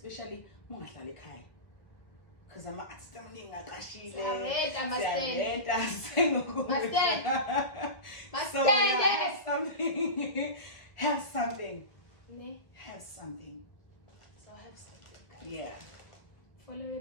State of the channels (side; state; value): right; late; 1.7 ms